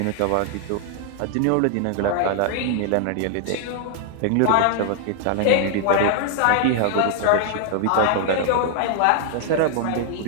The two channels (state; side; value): different; both; correlation 0.00